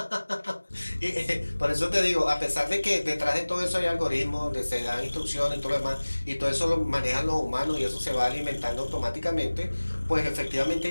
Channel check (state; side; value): inverted; both; correlation -1.00